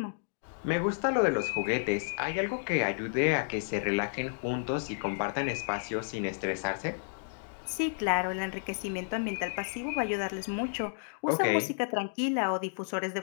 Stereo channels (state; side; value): silent; right; digital silence